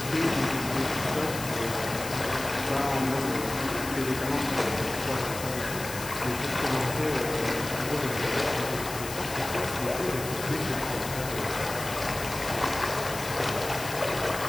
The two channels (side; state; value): left; noise; hiss, 9 dB below the sound